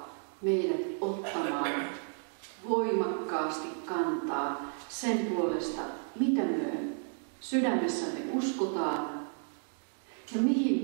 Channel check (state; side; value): silent; left; 56 dB below the other